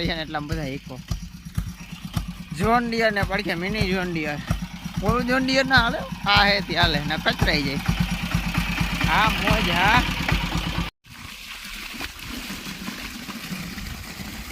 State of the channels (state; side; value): identical; both; correlation 1.00